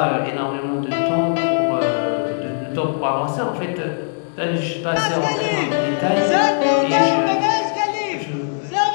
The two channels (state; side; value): silent; right; digital silence